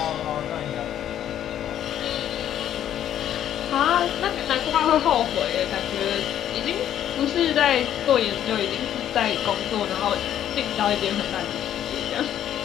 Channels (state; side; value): quieter; right; 10.8 dB